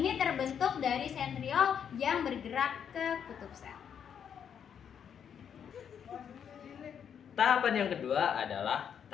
terbentuk dari sentriol yang bergerak ke kutub sel. Tahapan yang kedua adalah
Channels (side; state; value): right; quieter; 8.0 dB